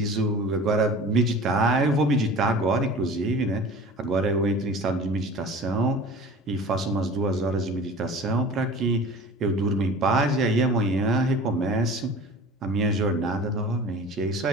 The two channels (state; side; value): normal; both; correlation 0.40